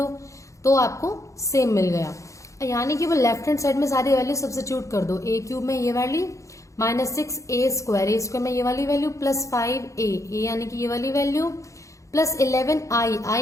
तो आपको सेम मिल गया। यानी कि वो लेफ्ट हैंड साइड में सारी वैल्यू सब्स्टिट्यूट कर दो। ए क्यूब में ये वैल्यू -6 ए स्क्वायर में ये वाली वैल्यू प्लस 5 ए यानी कि ये वाली value plus 11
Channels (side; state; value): right; late; 0.15 ms